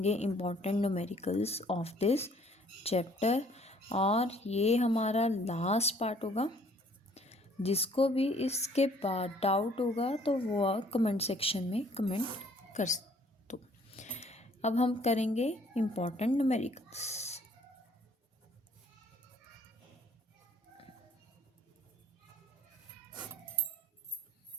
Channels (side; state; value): both; normal; correlation 0.59